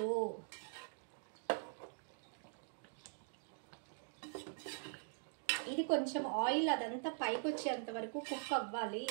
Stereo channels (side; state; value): left; silent; digital silence